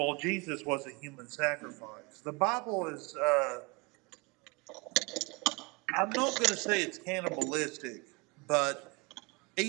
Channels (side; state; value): left; quieter; 27.1 dB